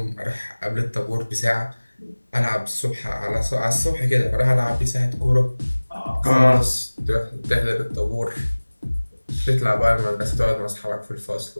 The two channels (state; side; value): inverted; both; correlation -1.00